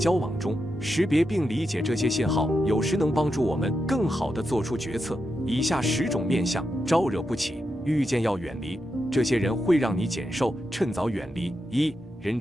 往中，识别并理解这些信号，有时能帮助我们更好地做出决策。以下10种面相招惹不起，遇见要远离。这些人会让你减寿，趁早远离。1. 人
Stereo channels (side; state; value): both; normal; correlation 0.86